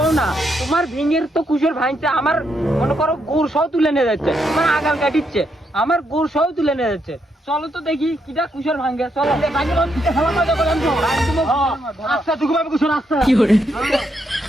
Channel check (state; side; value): normal; both; correlation 0.78